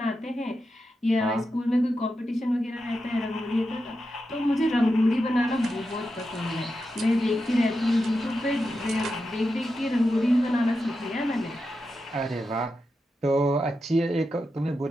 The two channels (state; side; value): normal; both; correlation 0.88